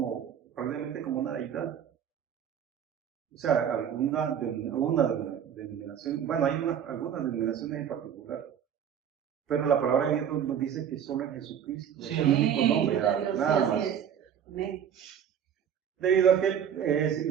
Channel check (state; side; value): quieter; left; 8.7 dB